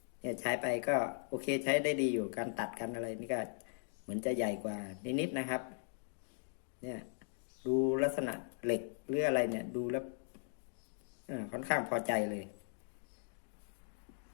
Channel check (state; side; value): silent; right; digital silence